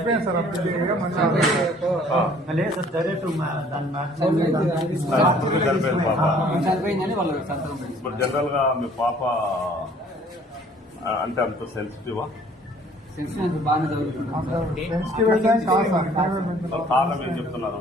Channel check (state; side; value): normal; both; correlation 0.56